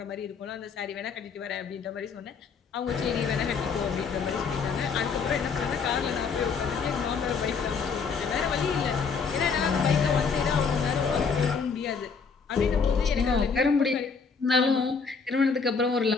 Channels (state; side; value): quieter; right; 5.4 dB